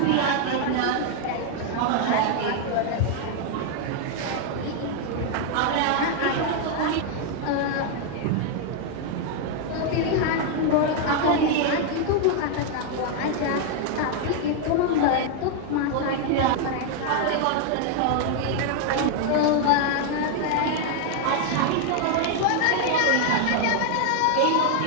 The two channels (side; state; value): both; different; correlation 0.00